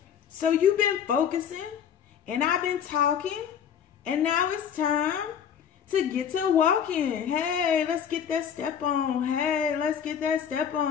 So you've been focusing. And I've been talking, and now it's time to get to walking. Hey, let's get that step on. Hey, let's get that step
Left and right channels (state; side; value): quieter; right; 8.3 dB